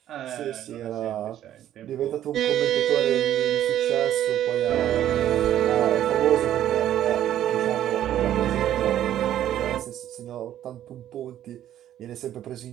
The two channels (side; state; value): left; quieter; 11.7 dB